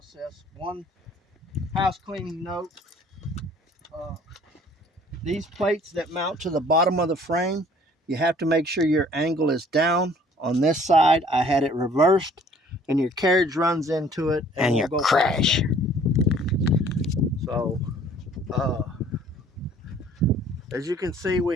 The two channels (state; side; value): normal; both; correlation 0.55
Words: One house cleaning note, these plates that mount to the bottom of the frame, you have to make sure your angle is down. On this side, I had it reversed and your carriage runs into it and you crash. So, as you can see,